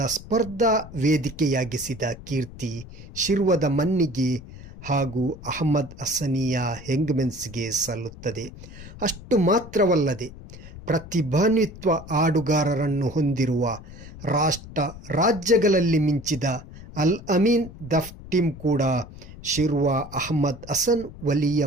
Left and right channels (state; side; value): noise; left; rumble, 16 dB below the sound